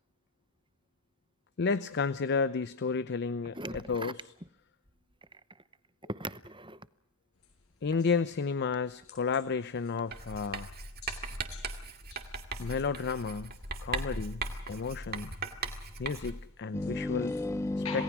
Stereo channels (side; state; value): right; quieter; 3.4 dB